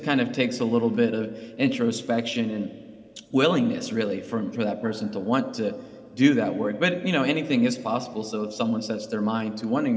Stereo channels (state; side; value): identical; both; correlation 1.00